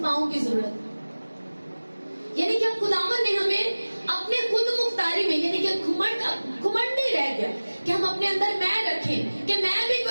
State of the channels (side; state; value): both; inverted; correlation -1.00